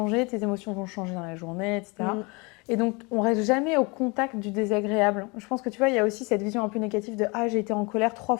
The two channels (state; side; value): quieter; right; 28.3 dB